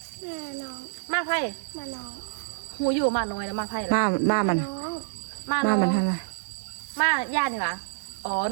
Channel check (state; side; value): silent; left; digital silence